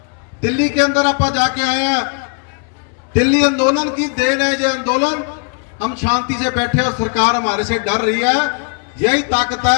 दिल्ली के अंदर आप जाके आए हैं, दिल्ली आंदोलन की देन है ये आंदोलन। हम शांति से बैठे और सरकार हमारे से डर रही है। यही ताकत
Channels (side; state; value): right; quieter; 39.7 dB